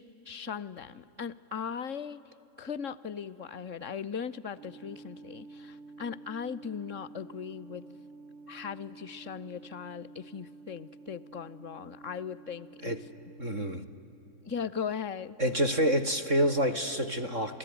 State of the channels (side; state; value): left; late; 3.7 ms